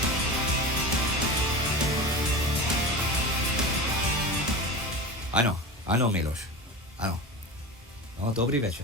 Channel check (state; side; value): normal; both; correlation 0.29